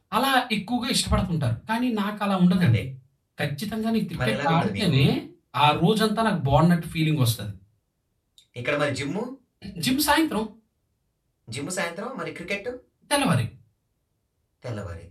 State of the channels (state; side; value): identical; both; correlation 1.00